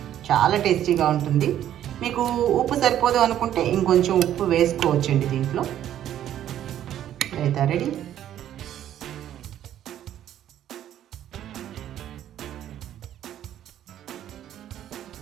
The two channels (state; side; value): quieter; left; 11.3 dB